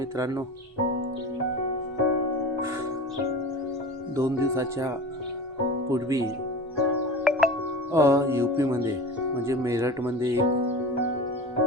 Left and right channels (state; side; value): normal; both; correlation 0.34